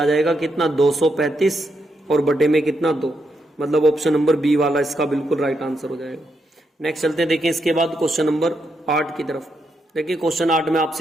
जाएगा कितना? 235 और बटे में कितना? 2, मतलब ऑप्शन नंबर बी वाला इसका बिल्कुल राइट आंसर हो जाएगा। नेक्स्ट चलते हैं, देखिए इसके बाद क्वेश्चन नंबर 8 की तरफ। देखिए क्वेश्चन 8 में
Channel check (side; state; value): both; normal; correlation 0.81